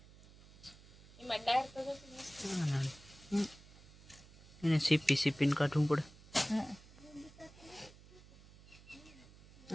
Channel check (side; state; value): right; noise; hum, 22 dB below the sound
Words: એને સીપી સીપીને કાઢવું પડે